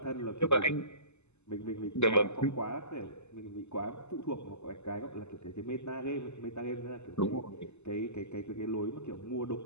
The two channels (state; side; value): late; right; 0.82 ms